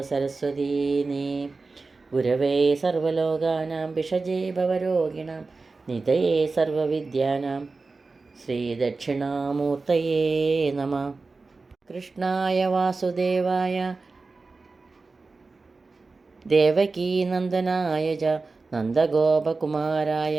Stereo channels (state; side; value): quieter; left; 3.9 dB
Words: സരസ്വതീ നീ. ഗുരവേ സർവലോകാനാം ഭിഷജേ ഭവരോഗിണാം നിധയേ സർവവിദ്യാനാം ശ്രീദക്ഷിണാമൂർത്തയേ നമഃ. കൃഷ്ണായ വാസുദേവായ ദേവകീനന്ദനായ ച നന്ദഗോപകുമാരായ